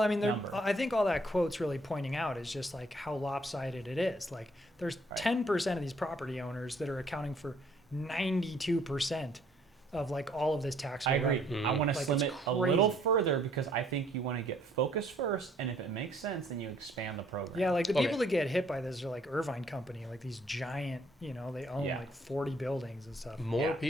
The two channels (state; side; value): normal; both; correlation 0.64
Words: mean, number. I think all that quote's really pointing out is just like how lopsided it is. Like, there's 10% of these property owners that are accounting for 92% of like all of this tax. I agree. Mm-hmm. I want to slim it a little further because I think you want to get focused first, and if it makes sense, then you expand the program. Yeah, like the people that get hit by this are like Irvine Company, like these giant, they own like 40 buildings and stuff. More